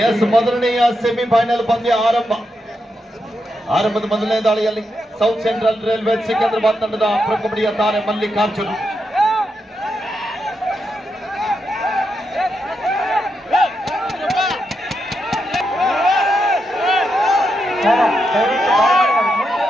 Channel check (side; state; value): both; normal; correlation 0.84